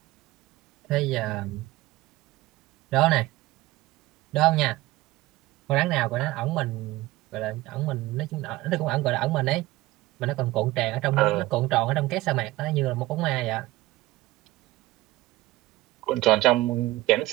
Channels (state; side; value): quieter; left; 18.4 dB